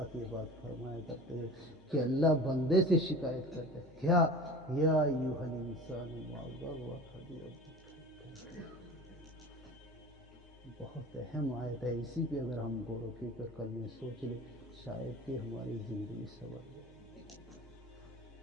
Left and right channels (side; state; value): both; normal; correlation 0.37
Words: یہ بات فرمایا کرتے ہیں کہ اللہ بندے سے شکایت کرتے ہیں کیا یا ایھا الانسان ما غرک بربک. بہت اہم آیت ہے, اسی پہ اگر ہم غور و فکر کر لیں, سوچ لیں, شاید کہ ہماری زندگی سنور جائے.